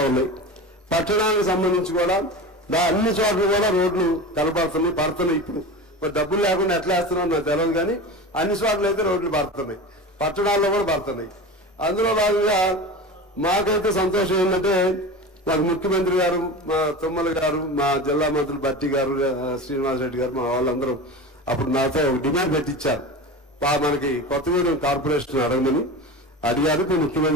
ఉన్నాయి. పట్టణానికి సంబంధించి కూడా అన్ని చోట్ల కూడా రోడ్లు పడుతున్నాయి. ఇప్పుడు మరి డబ్బులు లేకుండా ఎట్లా వేస్తున్నారో నాకు తెలియదు, కానీ అన్ని చోట్ల అయితే రోడ్లు పడుతున్నాయి, పట్టణాల్లో కూడా పడుతున్నాయి. అందులో భాగంగా మాకైతే సంతోషం ఏంటంటే మాకు ముఖ్యమంత్రి గారు, మా తుమ్మల గారు, మా జిల్లా మంత్రులు బట్టి గారు, శ్రీనివాసరెడ్డి గారు, మా వాళ్ళందరూ అప్పుడు నాతో డిమాండ్ పెట్టించారు, మనకి కొత్తగూడెం కార్పొరేషన్ అడగమని అడిగారు. ఇప్పుడు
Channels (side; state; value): both; normal; correlation 0.30